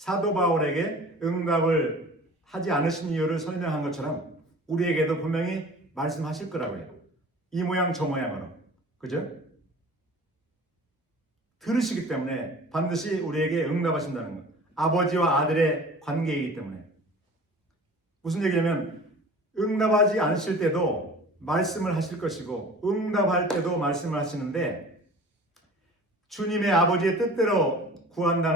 바울에게 응답을 하지 않으신 이유를 설명한 것처럼 우리에게도 분명히 말씀하실 거라고요. 이 모양 저 모양으로. 그죠? 들으시기 때문에 반드시 우리에게 응답하신다는 것. 아버지와 아들의 관계이기 때문에. 무슨 얘기냐면 응답하지 않으실 때도 말씀을 하실 것이고 응답할 때도 말씀을 하시는데 주님의 아버지의 뜻대로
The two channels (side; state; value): both; normal; correlation 0.43